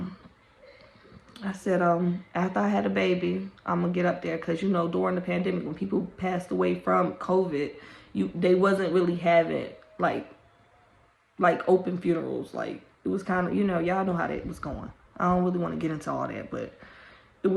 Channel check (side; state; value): both; identical; correlation 1.00